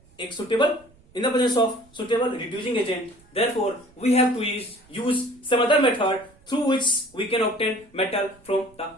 एक suitable reducing agent. Therefore we have to use some other method through which we can obtain metal from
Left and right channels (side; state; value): right; noise; rumble, 29 dB below the sound